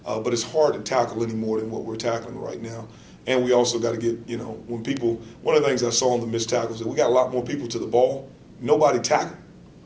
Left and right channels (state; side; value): identical; both; correlation 1.00